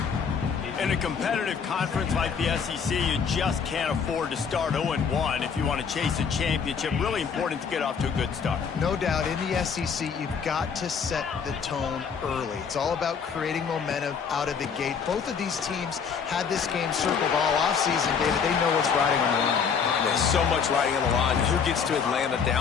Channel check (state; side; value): quieter; right; 6.4 dB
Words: In a competitive conference like the SEC, you just can't afford to start 0-1 if you want to chase a championship. Really important to get off to a good start. No doubt, in the SEC, you've got to set the tone early. It's all about creating momentum out of the gate. Both of these teams had this game circled all offseason, David. They know what's riding on the line. There's so much riding on the line. Who gets to Atlanta